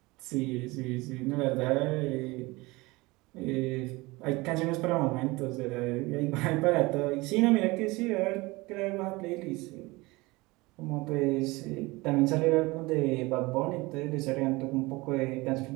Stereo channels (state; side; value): quieter; left; 22.6 dB